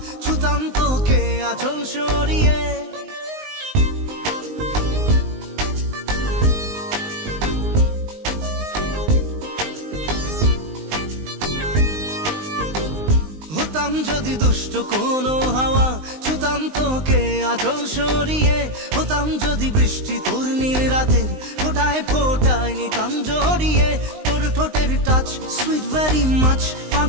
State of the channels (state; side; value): late; left; 19 ms